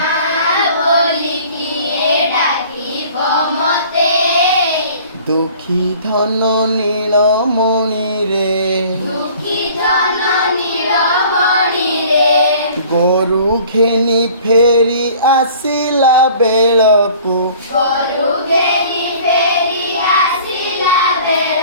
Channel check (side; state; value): both; inverted; correlation -0.50